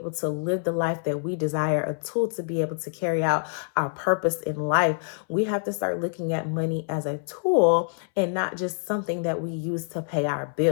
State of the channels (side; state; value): right; silent; 61 dB below the other